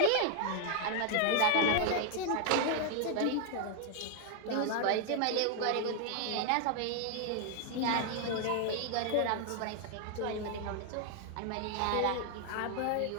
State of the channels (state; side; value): different; both; correlation 0.00